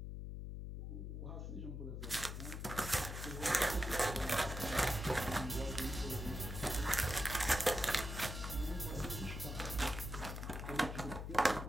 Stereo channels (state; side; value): noise; left; hum, 6 dB below the sound